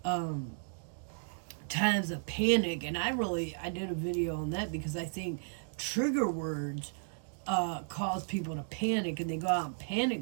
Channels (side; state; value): left; silent; digital silence